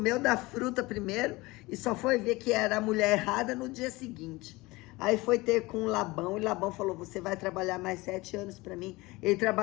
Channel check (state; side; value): quieter; right; 21.9 dB